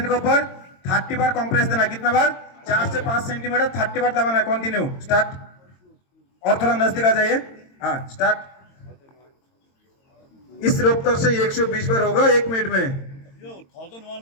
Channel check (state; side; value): late; right; 22 ms